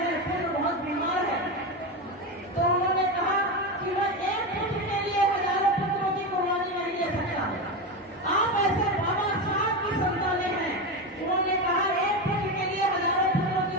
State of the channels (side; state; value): both; normal; correlation 0.17